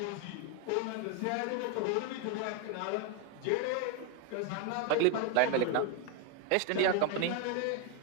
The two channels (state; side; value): different; both; correlation 0.01